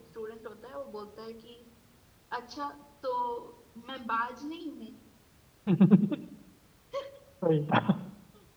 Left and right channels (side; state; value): both; identical; correlation 1.00